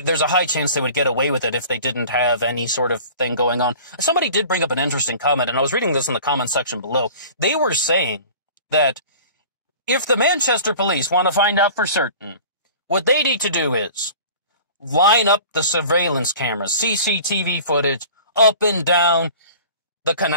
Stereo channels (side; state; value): both; inverted; correlation -0.43